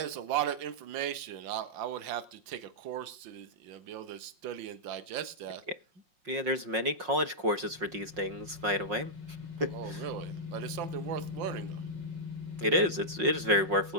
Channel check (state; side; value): late; left; 5.5 ms